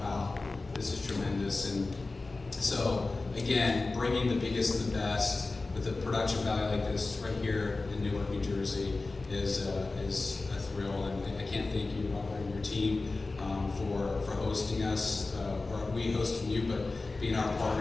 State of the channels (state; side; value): quieter; right; 3.5 dB